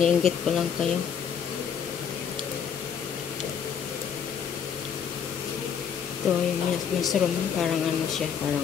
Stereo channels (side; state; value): right; quieter; 7.5 dB